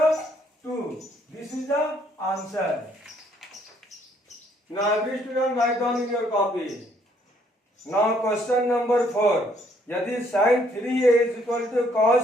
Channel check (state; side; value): normal; both; correlation 0.67